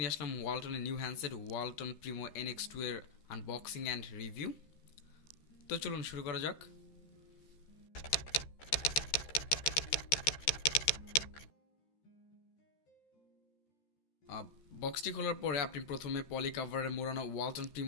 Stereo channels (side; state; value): right; late; 13 ms